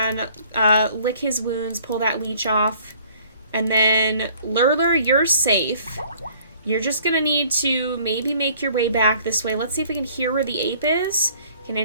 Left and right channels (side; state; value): both; inverted; correlation -0.56